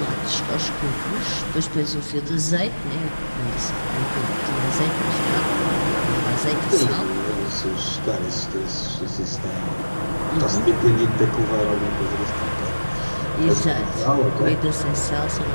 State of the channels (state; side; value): inverted; both; correlation -1.00